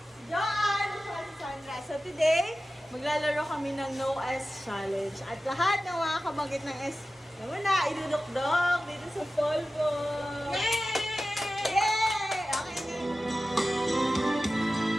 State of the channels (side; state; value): both; normal; correlation 0.94